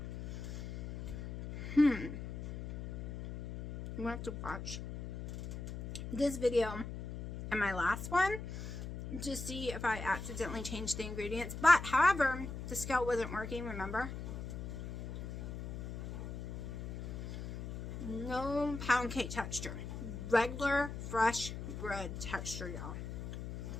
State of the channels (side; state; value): left; noise; hum, 7 dB below the sound